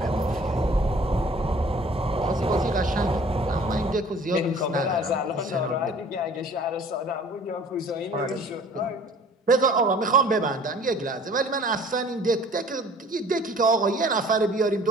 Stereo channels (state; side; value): normal; both; correlation 0.50